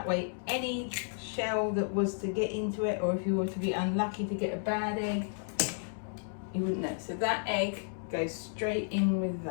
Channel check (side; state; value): right; silent; digital silence